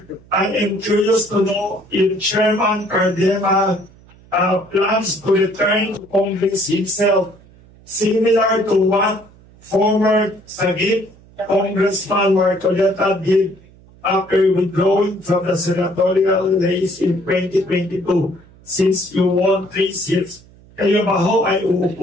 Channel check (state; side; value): noise; right; hum, 26 dB below the sound